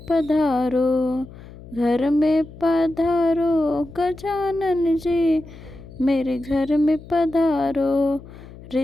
पधारो। घर में पधारो गजानन जी, मेरे घर में पधारो।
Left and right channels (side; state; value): left; noise; hum, 18 dB below the sound